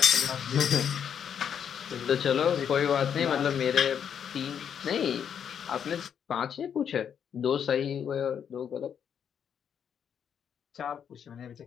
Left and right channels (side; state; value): right; quieter; 8.1 dB